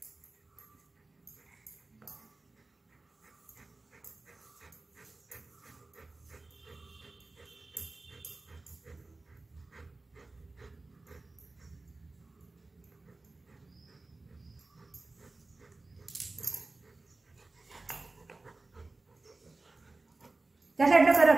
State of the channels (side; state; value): left; quieter; 3.3 dB